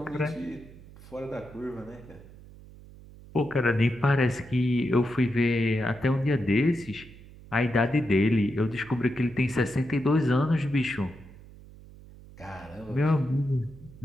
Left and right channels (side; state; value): right; noise; hum, 20 dB below the sound